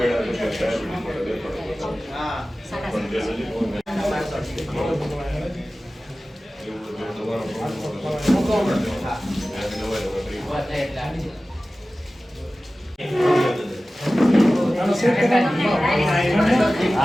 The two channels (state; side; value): normal; both; correlation 0.96